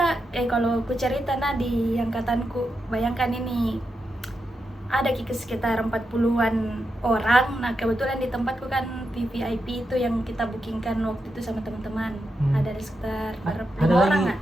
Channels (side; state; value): both; normal; correlation 0.86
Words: kalau ku cerita di angkatanku, bayangkan ini ada sekitar 40-an orang. Nah kebetulan di tempatku kan VVIP itu yang kita bookingkan waktu itu sama teman-teman. Ada sekitar 5 orang kan?